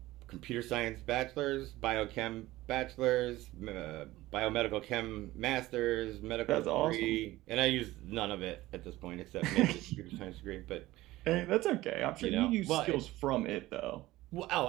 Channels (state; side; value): quieter; left; 17.5 dB